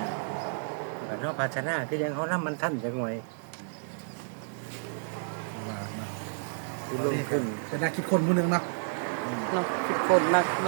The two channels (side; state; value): left; silent; digital silence